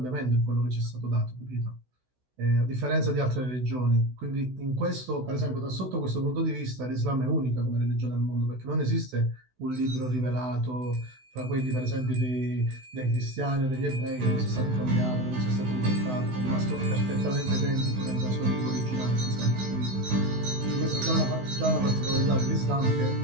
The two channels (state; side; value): late; left; 16 ms